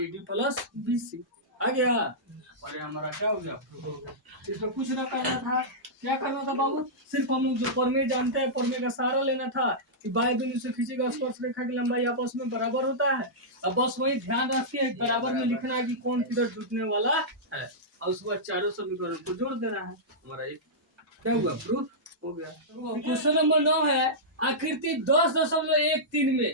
प्लस BC आ गया। और हमारा क्या हो गया, प्रूफ हो गया। इसमें कुछ ना करना था, क्या करना था बाबू, सिर्फ हम लोग जो परमेय जानते हैं, परमेय का सहारा लेना था कि बाह्य बिंदु से खींची गई स्पर्श रेखा की लंबाई आपस में बराबर होता है। अब बस वही ध्यान रखिए, बराबर में लिखना है कि कौन किधर जुटने वाला है, और उसके बाद चारों समीकरण को जोड़ देना है। हमारा एक क्या हुआ, प्रूफ हो गया। क्वेश्चन नंबर 9 है, आकृति 10.13 में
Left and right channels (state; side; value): normal; both; correlation -0.13